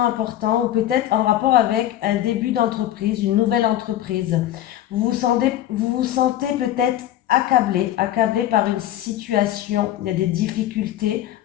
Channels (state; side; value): quieter; right; 12.7 dB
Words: importants ou peut-être en rapport avec un début d'entreprise, une nouvelle entreprise. Vous vous sentez peut-être accablé par une situation, il y a des difficultés,